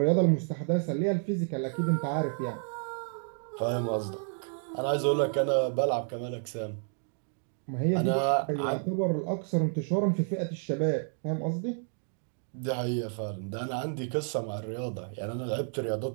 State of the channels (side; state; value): left; silent; 57 dB below the other